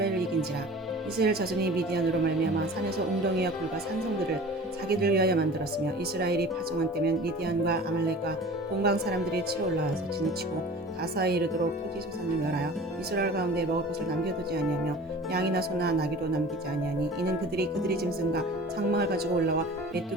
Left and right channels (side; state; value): both; normal; correlation 0.41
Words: 이긴지라. 이스라엘 자손이 미디안으로 말미암아 산에서 웅덩이와 굴과 산성들을 자기들 위하여 만들었으며 이스라엘이 파종한 때면 미디안과 아말렉과 동방 사람들이 치러 올라와서 지나치고 가사에 이르도록 토지 소산을 멸하여 이스라엘 가운데 먹을 것을 남겨두지 아니하며 양이나 소나 나귀도 남기지 아니하니 이는 그들이 짐승과 장막을 가지고 올라와